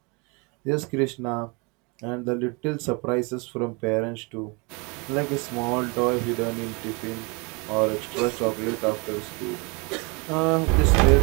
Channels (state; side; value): quieter; left; 30.6 dB